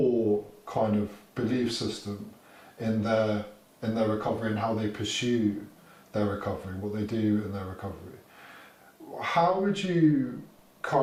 kind of belief system in their recovery and how they pursue their recovery, what they do in their recovery. How would you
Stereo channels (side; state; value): both; identical; correlation 1.00